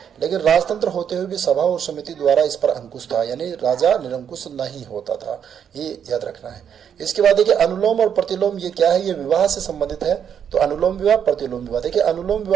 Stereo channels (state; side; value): quieter; left; 8.3 dB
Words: लेकिन राजतंत्र होते हुए भी सभा और समिति द्वारा इस पर अंकुश था, यानी राजा निरंकुश नहीं होता था, ये याद रखना है। इसके बाद देखिए, अनुलोम और प्रतिलोम ये क्या है, ये विवाह से संबंधित है। तो अनुलोम विवाह, प्रतिलोम विवाह। देखिए, अनुलोम